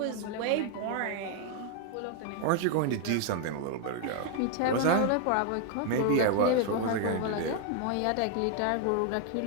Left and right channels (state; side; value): different; both; correlation 0.00